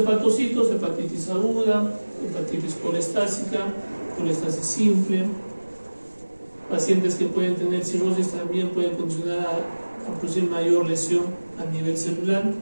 hepatitis aguda, hepatitis colestásica, colestasis simple. Pacientes que pueden tener cirrosis también pueden condicionar a producir mayor lesión a nivel celular.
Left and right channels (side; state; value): both; inverted; correlation -1.00